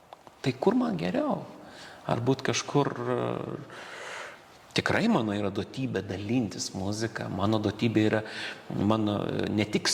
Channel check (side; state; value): both; identical; correlation 1.00